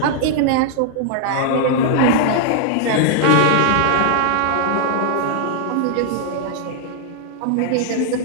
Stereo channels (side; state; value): both; different; correlation -0.01